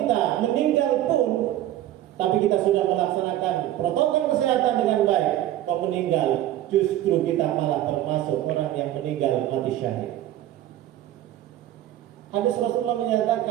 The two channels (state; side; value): quieter; left; 13.3 dB